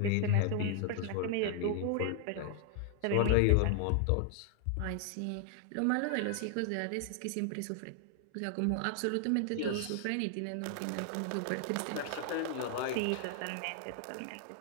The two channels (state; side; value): different; both; correlation 0.00